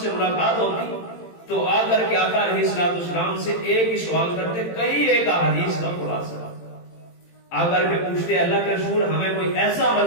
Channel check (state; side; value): late; right; 18 ms